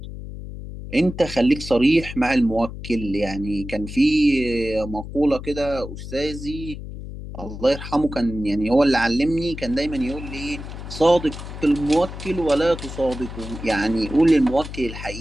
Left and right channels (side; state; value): left; noise; hum, 10 dB below the sound